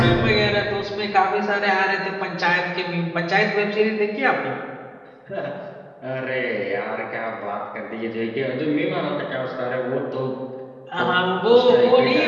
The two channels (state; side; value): identical; both; correlation 1.00